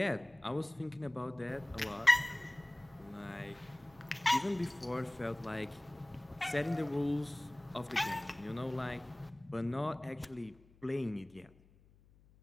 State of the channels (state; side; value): noise; left; hum, 27 dB below the sound